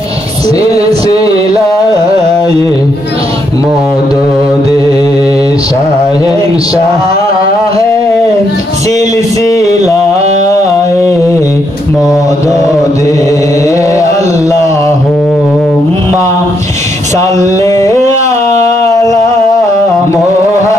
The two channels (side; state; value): both; normal; correlation 0.76